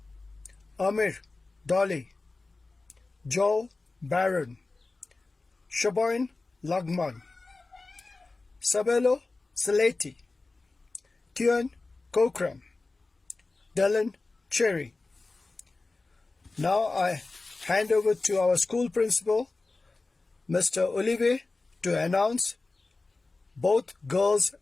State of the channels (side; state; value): right; quieter; 3.5 dB